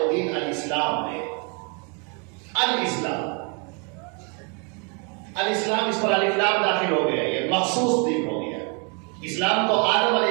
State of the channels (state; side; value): quieter; left; 35.4 dB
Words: دین الاسلام ہے. الاسلام، الاسلام، اس پر الف لام داخل ہو گیا، یہ مخصوص دین ہو گیا. اسلام تو آدم